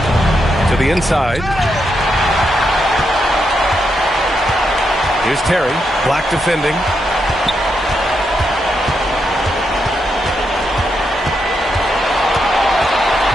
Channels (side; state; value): both; normal; correlation 0.82